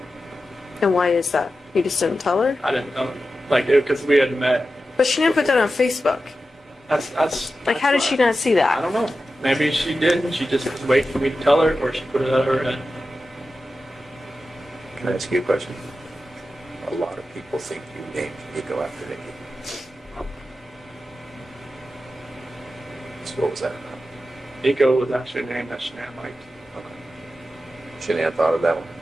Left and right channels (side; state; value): both; normal; correlation 0.92